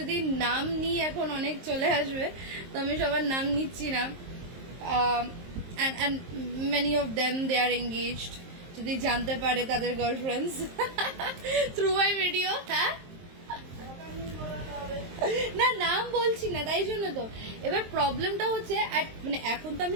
নাম নিই এখন অনেক চলে আসবে, তো আমি সবার নাম নিচ্ছি না। and many of them they are engaged, যদি জানতে পারে তাদের গার্লফ্রেন্ডস থ্রু মাই ভিডিও। হ্যাঁ, না নাম বলছি না, তাই জন্য তো। এবার প্রবলেমটা হচ্ছে মানে এখন তো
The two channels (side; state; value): left; late; 23 ms